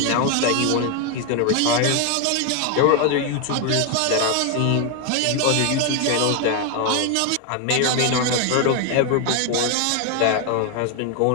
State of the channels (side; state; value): both; different; correlation 0.01